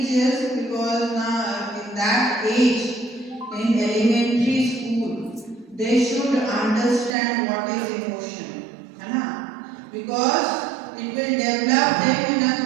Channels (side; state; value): left; drops out; at 7.1 s